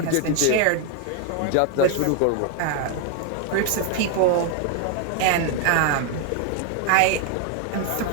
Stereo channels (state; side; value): different; both; correlation 0.01